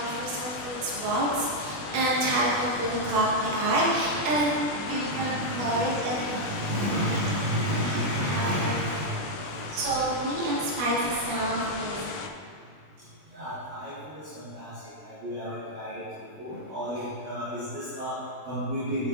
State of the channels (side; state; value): left; late; 20 ms